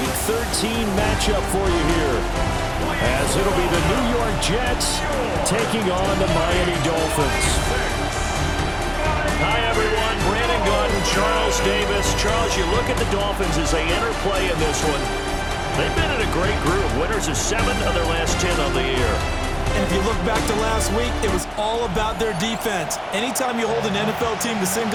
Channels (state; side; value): identical; both; correlation 1.00